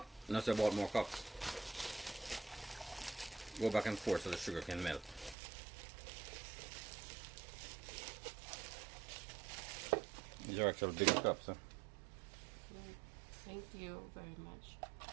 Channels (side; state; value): left; drops out; at 5.4 s